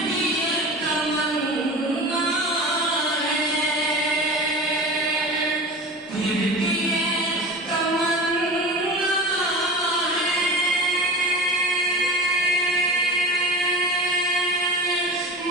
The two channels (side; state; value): both; normal; correlation 0.33